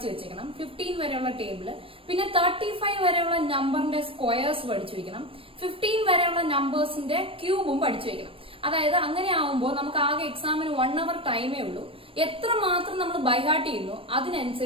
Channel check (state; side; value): late; left; 0.26 ms